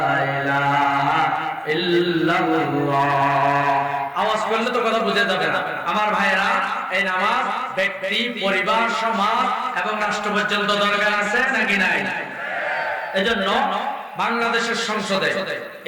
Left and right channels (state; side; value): identical; both; correlation 1.00